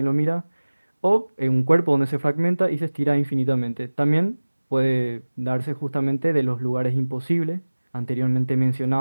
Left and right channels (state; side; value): inverted; both; correlation -1.00